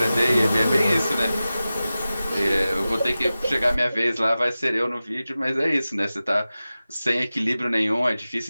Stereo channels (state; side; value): inverted; both; correlation -0.95